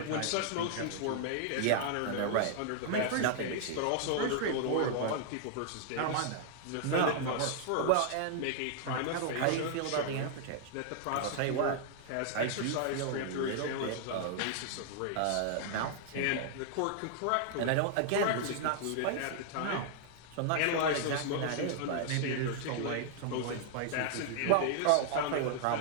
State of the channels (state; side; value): different; both; correlation 0.00